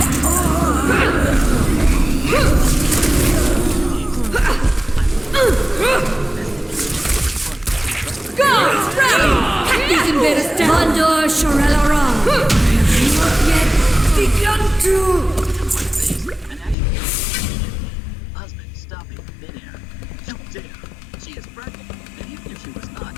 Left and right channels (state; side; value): drops out; right; at 16.8 s